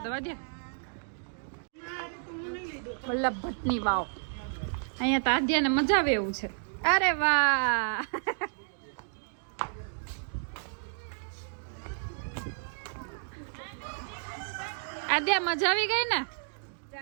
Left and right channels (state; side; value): silent; left; digital silence